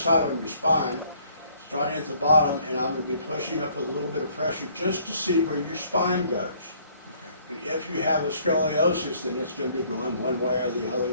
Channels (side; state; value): both; inverted; correlation -0.62